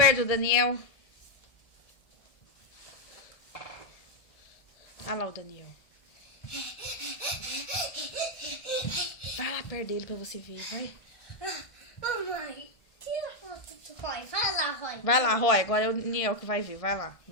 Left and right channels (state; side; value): late; right; 1.5 ms